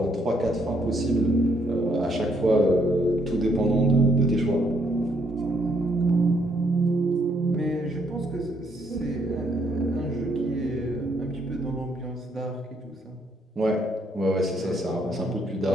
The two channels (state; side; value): normal; both; correlation 0.71